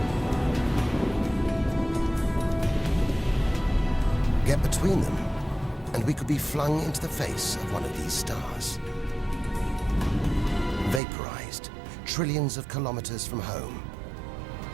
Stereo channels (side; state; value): left; drops out; at 11.0 s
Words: Get between them, and we could be flung into the face of one of these stars. Vaporized, trillions of kilometers from home.